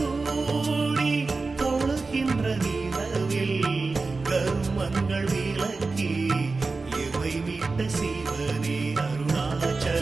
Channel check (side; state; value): left; quieter; 3.9 dB